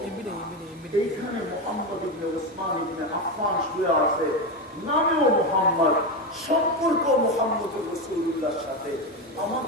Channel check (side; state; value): both; normal; correlation 0.14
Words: এইখানে মুহাম্মদ ইবনে ওসমান ইবনে আফফান শুয়ে আছে, নামেও মুহাম্মদ, সম্পর্ক মুহাম্মদুর রাসূলুল্লাহর সাথে।